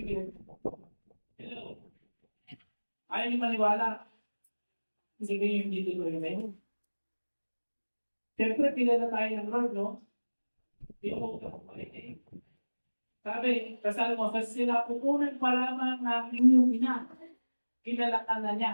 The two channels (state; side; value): inverted; both; correlation -1.00